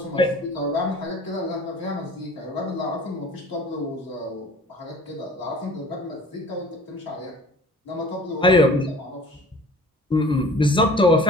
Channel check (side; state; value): both; normal; correlation 0.46